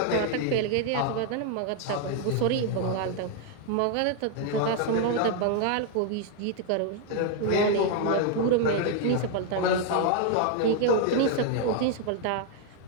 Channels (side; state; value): both; different; correlation 0.00